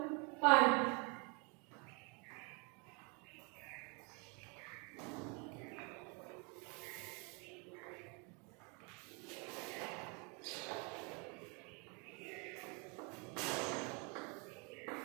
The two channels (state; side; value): quieter; left; 32.7 dB